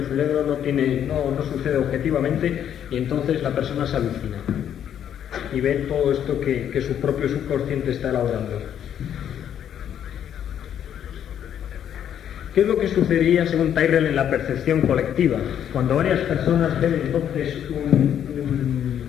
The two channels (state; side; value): quieter; right; 9.6 dB